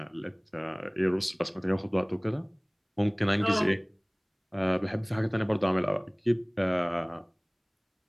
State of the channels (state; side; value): identical; both; correlation 1.00